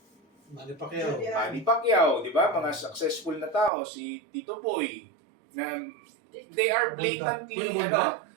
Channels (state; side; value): drops out; left; at 3.7 s